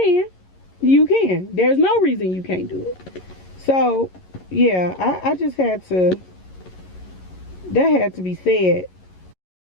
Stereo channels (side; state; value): right; late; 11 ms